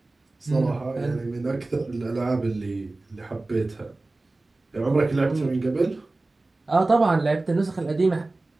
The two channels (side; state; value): left; quieter; 3.1 dB